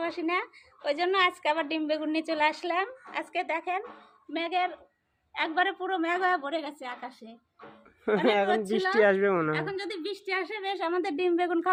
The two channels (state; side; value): identical; both; correlation 1.00